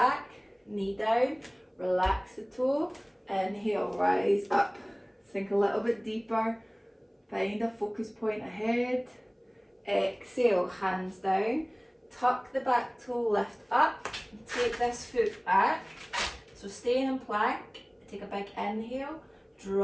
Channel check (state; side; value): identical; both; correlation 1.00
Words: knee down, relax the toe. Inhale, rise up. Sink a little bit deeper. Find a focus point ahead. Exhale, hands down. Tuck the back toe, lift up. Take this foot back. So stay in plank. Take a big inhale.